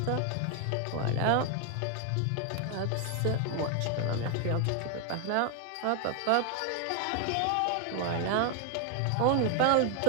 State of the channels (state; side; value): different; both; correlation 0.01